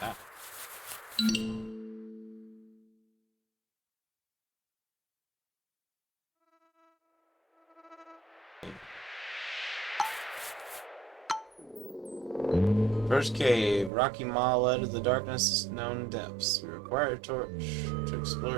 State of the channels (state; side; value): drops out; left; at 13.9 s